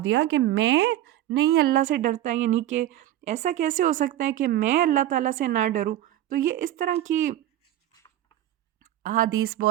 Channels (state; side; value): quieter; left; 13.2 dB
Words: دیا کہ میں نہیں اللہ سے ڈرتا، یعنی کہ ایسا کیسے ہو سکتا ہے کہ میں اللہ تعالیٰ سے نہ ڈروں۔ تو یہ اس طرح کی احادیث